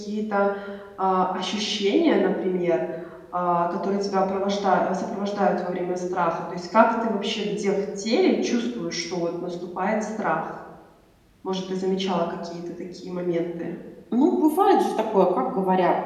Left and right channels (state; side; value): identical; both; correlation 1.00